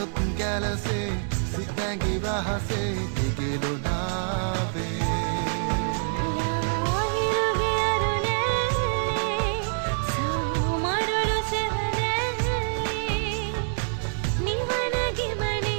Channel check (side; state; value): left; silent; digital silence